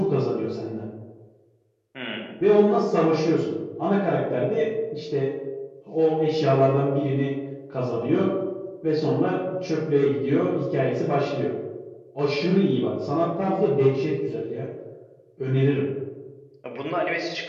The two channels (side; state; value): both; identical; correlation 1.00